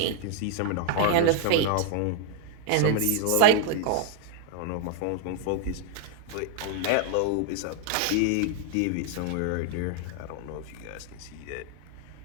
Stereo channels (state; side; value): different; both; correlation 0.00